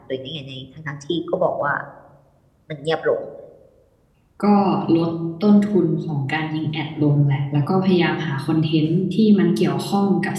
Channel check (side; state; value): both; identical; correlation 1.00